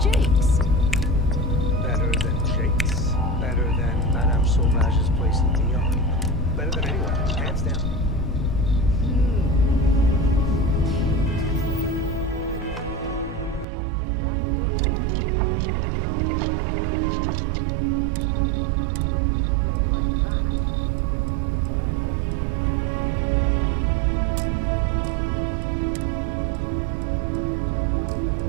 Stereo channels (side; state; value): left; drops out; at 13.7 s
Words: Better than Jake's. Better than Madame Sauvage's place in Lyon. Better than anywhere, hands down.